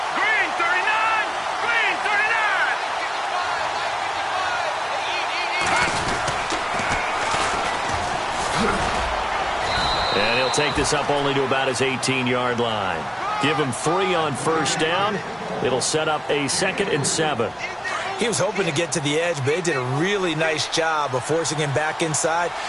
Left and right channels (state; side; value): identical; both; correlation 1.00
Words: And he'll take this up only to about his 18-yard line. Give him 3 on first down. It'll set up a 2nd and 7. He was hoping to get to the edge, but they did a really nice job of forcing him back inside.